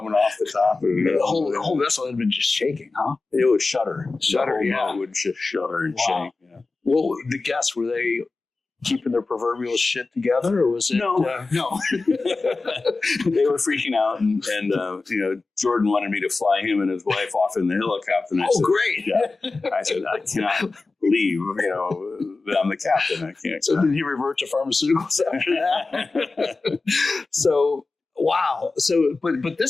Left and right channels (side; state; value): right; quieter; 3.7 dB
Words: off the top. And, the whole vessel had been just shaking, huh? It would shudder. Shudder, yeah. It would just shudder and shake. Yeah. Well, the guests, were they keeping their proverbial shit together, or was it? No. No. They were freaking out, and Jordan wanted me to fly him and his wife off in the helicopter. And I said, great! Yeah. I said, I cannot believe that I'm the captain. I can't. So did he revert to pharmaceuticals after that? So wow. So but